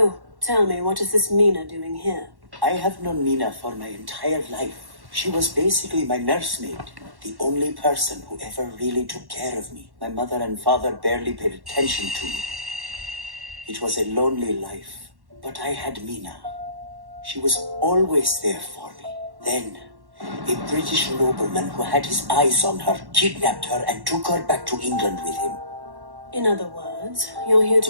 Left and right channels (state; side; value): late; left; 1.1 ms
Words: tell me, what is this Mina doing here? I have known Mina for my entire life. She was basically my nursemaid, the only person who ever really took care of me. My mother and father barely paid attention to me. It was a lonely life, but I had Mina. She was always there for me. Then, a British nobleman who had his eyes on her kidnapped her and took her back to England with him. In other words, you're here to